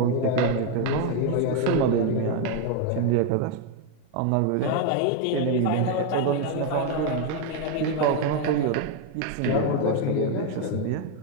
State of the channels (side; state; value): both; different; correlation 0.01